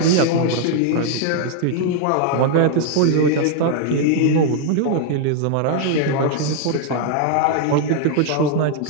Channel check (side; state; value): both; different; correlation 0.00